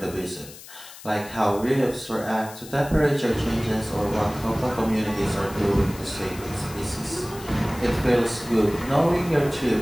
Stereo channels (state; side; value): noise; left; hiss, 17 dB below the sound